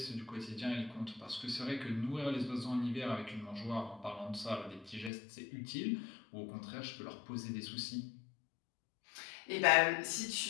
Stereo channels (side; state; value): right; drops out; at 5.1 s